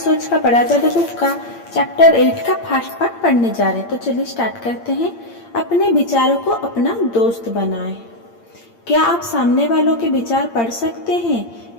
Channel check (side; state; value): right; late; 8.7 ms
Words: का बड़ा जादू बुक का चैप्टर 8 का फर्स्ट पार्ट पढ़ने जा रहे हैं। तो चलिए स्टार्ट करते हैं। अपने विचारों को अपना दोस्त बनाएं। क्या आप सामने वालों के विचार पढ़ सकते हैं?